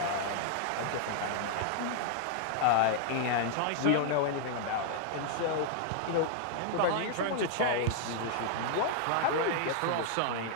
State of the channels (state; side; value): different; both; correlation 0.00